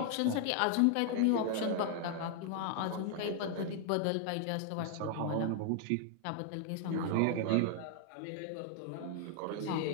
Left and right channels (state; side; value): different; both; correlation 0.00